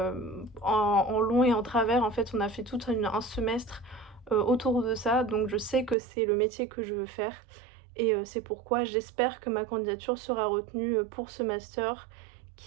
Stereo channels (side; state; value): left; drops out; at 6.0 s